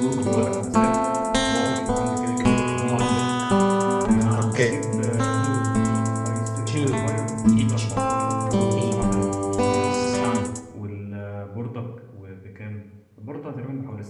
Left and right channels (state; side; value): identical; both; correlation 1.00